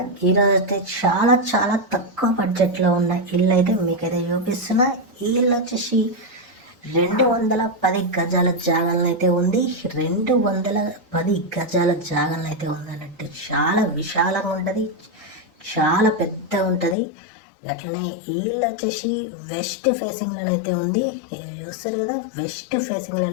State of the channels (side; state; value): right; drops out; at 16.9 s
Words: ఈరోజు అయితే చాలా చాలా తక్కువ బడ్జెట్లో ఉన్న ఇల్లు అయితే మీకైతే చూపిస్తున్నా. ఈ ఇల్లు వచ్చేసి 210 గజాల జాగాలను అయితే ఉంది. 210 గజాల జాగాలను అయితే ఉంది అన్నట్టు. చాలా విశాలంగా ఉంటుంది, చాలా పెద్దగా ఉంటుంది. అట్లనే ఈ ఇల్లు వచ్చేసి వెస్ట్ ఫేసింగ్లోనైతే ఉంది. చూస్తారు కదా, వెస్ట్